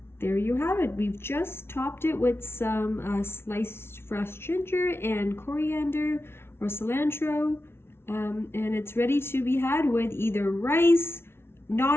There you have it. We've just topped it with some sliced fresh ginger and coriander or cilantro, and it's ready to be had with either rice,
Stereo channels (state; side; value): late; right; 0.12 ms